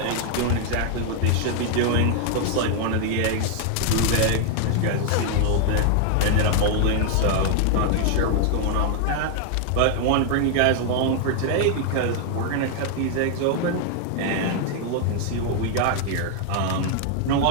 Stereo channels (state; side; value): different; both; correlation 0.00